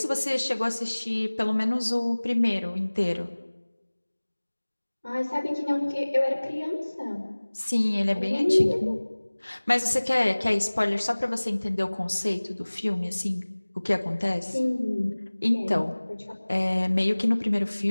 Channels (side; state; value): both; inverted; correlation -1.00